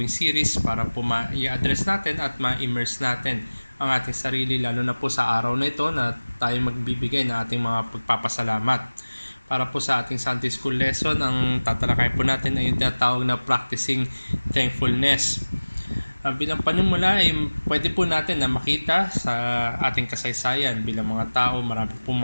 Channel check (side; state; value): both; inverted; correlation -1.00